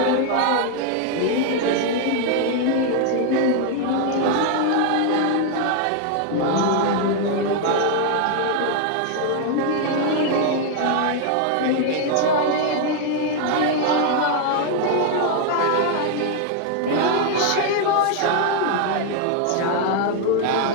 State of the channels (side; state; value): both; different; correlation 0.00